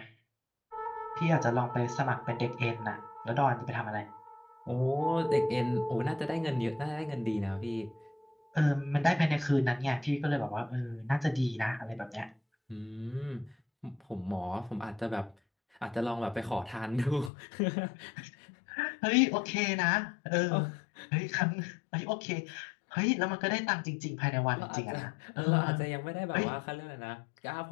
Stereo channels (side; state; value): right; drops out; at 17.3 s